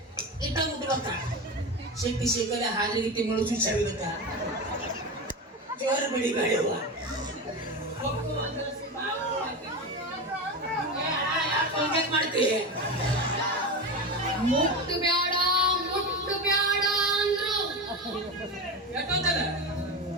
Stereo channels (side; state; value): both; normal; correlation 0.22